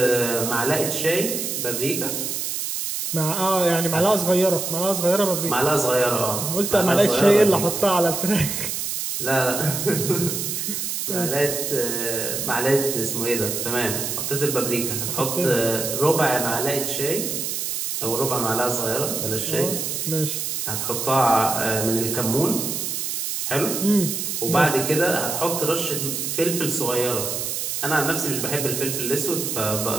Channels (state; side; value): noise; right; hiss, 2 dB below the sound